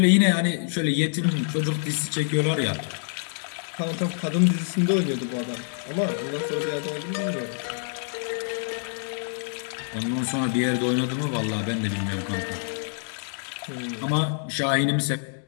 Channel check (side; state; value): right; silent; digital silence